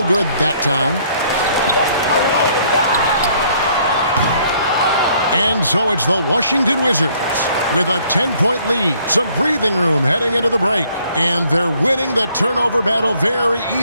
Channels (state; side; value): inverted; both; correlation -0.63